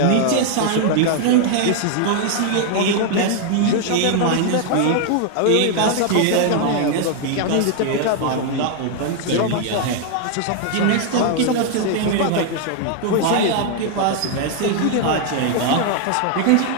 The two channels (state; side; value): different; both; correlation 0.00